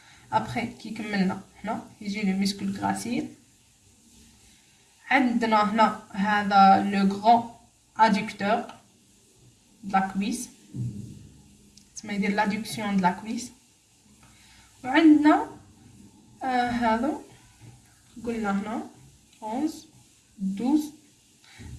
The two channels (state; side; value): identical; both; correlation 1.00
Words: Après كي كملنا هنا يجي le muscle gracile. عندنا هنا هذا le grand adducteur de la cuisse. تسمى يدير l'adduction de la cuisse. وعندنا هذا قلنا هنا 11 12